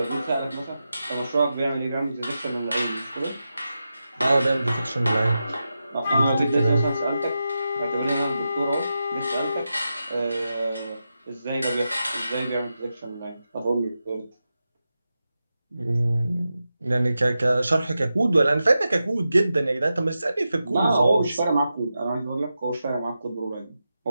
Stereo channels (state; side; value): inverted; both; correlation -0.90